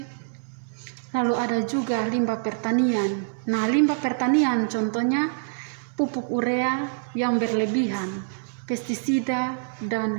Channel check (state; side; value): silent; left; digital silence